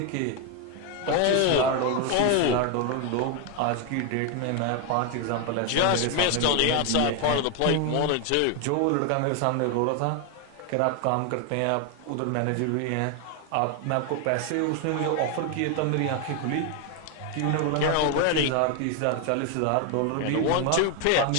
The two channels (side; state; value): both; different; correlation 0.01